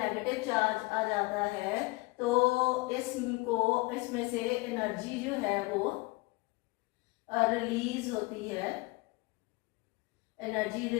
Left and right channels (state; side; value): quieter; right; 24.4 dB